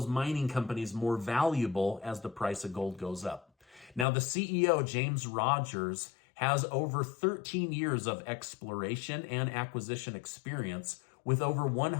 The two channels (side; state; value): right; drops out; at 4.0 s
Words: mining companies more valuable as the price of gold goes up. Now, the CEO, James Rogers, has over 13 years of exploration and acquisition experience with over